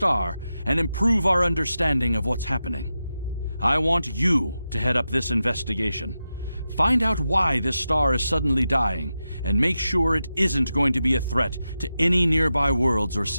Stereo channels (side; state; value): both; inverted; correlation -0.90